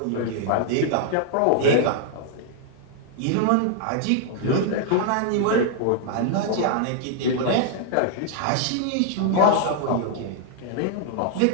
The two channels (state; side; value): different; both; correlation -0.01